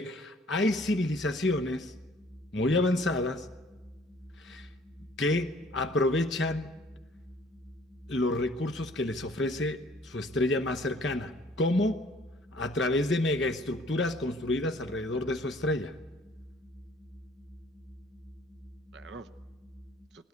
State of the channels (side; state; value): both; normal; correlation 0.57